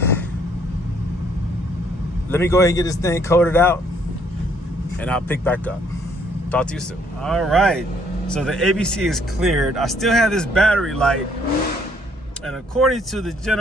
let me go ahead and get this thing coated out, and I'll pick back up. Talk to you soon. All right, so the ABC is cleared. I still have this battery light, and according to the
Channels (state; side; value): normal; both; correlation 0.66